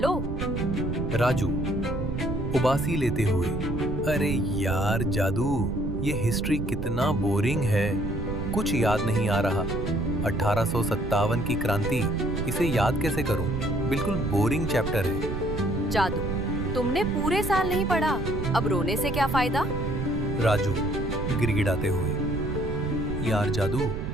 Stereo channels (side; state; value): right; noise; rumble, 4 dB below the sound